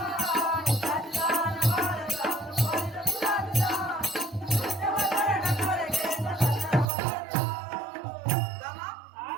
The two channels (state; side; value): drops out; left; at 6.9 s